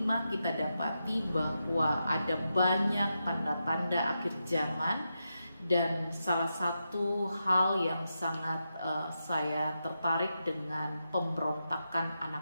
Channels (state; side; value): inverted; both; correlation -0.87